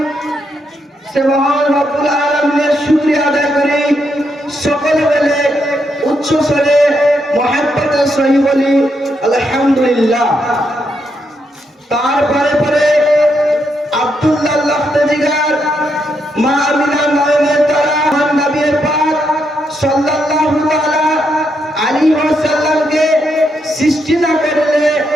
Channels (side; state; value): both; normal; correlation 0.79